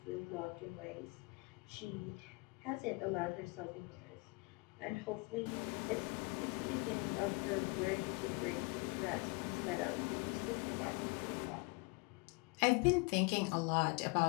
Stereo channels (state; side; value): quieter; right; 27.9 dB